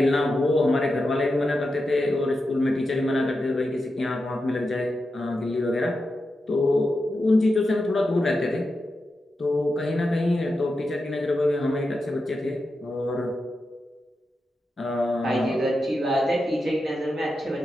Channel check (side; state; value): both; normal; correlation 0.89